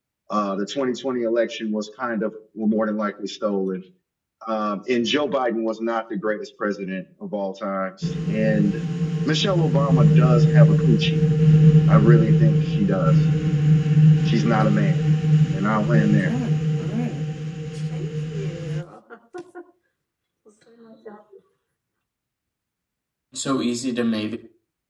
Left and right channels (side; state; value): both; identical; correlation 1.00